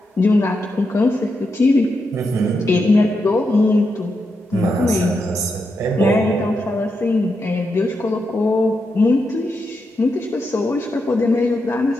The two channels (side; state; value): both; normal; correlation 0.85